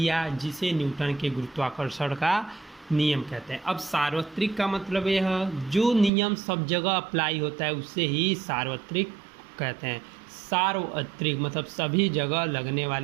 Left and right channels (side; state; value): left; drops out; at 6.1 s